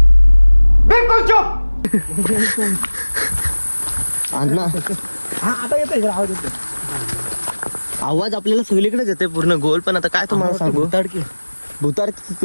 बिलकुल चुप. अण्णा हा आता येतोय आवाज येतोय. आवाज आपल्याला सगळीकडेच येते पूर्ण गोल. पण आता काय तुम्हाला सांगू, भूताड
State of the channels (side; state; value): both; inverted; correlation -1.00